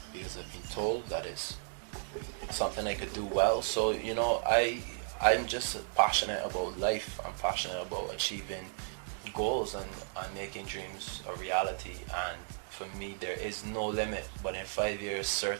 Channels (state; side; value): silent; left; digital silence